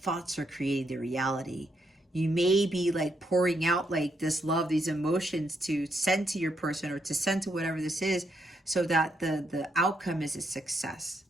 are creating the reality. You may be like pouring out like this love, these emotions to send to your person or to send to whatever this is so that the outcome is a success.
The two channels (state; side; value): normal; both; correlation 0.78